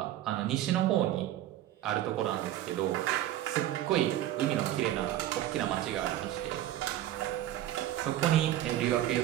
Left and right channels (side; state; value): left; quieter; 13.2 dB